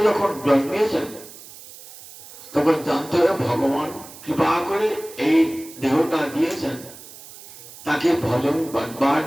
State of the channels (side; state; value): right; noise; hiss, 18 dB below the sound